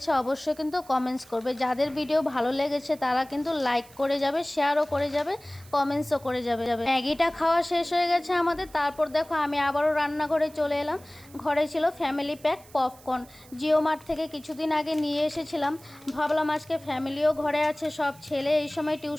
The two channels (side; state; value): right; noise; hiss, 23 dB below the sound